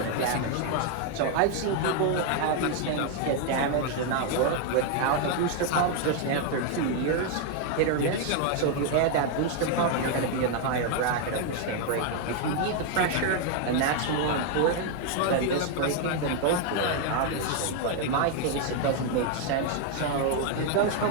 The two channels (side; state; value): both; different; correlation 0.01